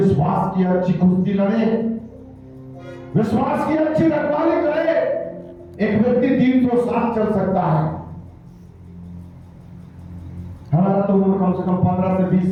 की अच्छी कुश्ती लड़े, विश्वास की अच्छी रखवाली करे। एक व्यक्ति 300 साल चल सकता है। हमारा तो उम्र कम से कम 15 से 20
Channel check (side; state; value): both; identical; correlation 1.00